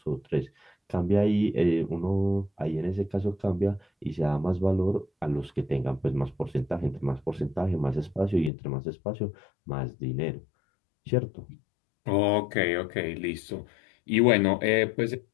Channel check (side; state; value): right; drops out; at 8.5 s